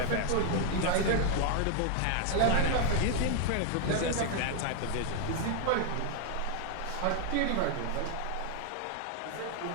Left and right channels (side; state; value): both; different; correlation 0.00